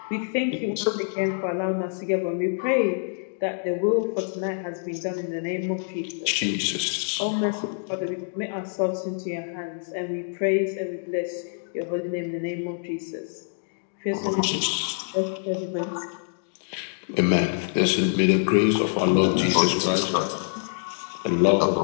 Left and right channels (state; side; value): silent; right; digital silence